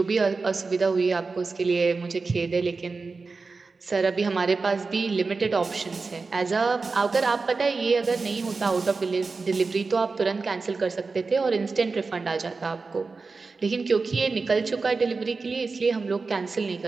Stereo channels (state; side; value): quieter; left; 4.2 dB